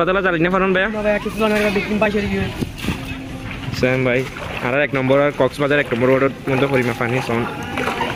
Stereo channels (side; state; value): both; identical; correlation 1.00